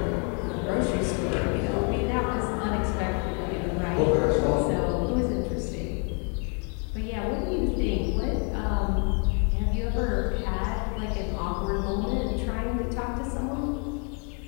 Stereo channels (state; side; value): quieter; right; 39.1 dB